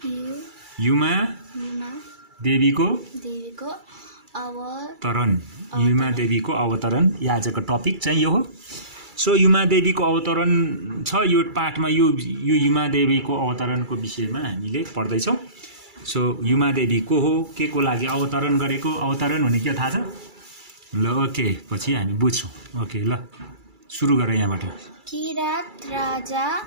युमा देवीको अवतरण. युमा देवीको अवतरण यो आजको टपिक चाहिँ यो हो. सो युमा देवीको अवतरण छ यो पाठमा. यो युमा देवीको अवतरणको विषयमा हामीले पढ्दै छौं. सो युमा देवी को हो, के को लागि अवतरण गरेको, अवतरण भने के थाहा छ? ल ओके, पछि हामी बुझ्छौं. ओके ल सुरु गरौँ यहाँबाट. किरात राजा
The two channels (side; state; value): left; late; 2.3 ms